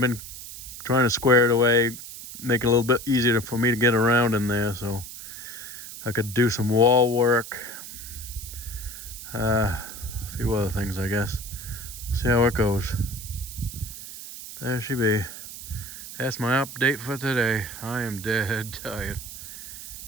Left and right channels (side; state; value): right; noise; hiss, 12 dB below the sound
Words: trying to square it away, make it a little bit easier for me to get around in there, so I could do some wall work, a few other things, I guess. See how it goes. There she be. That's my update for today. I am dead tired.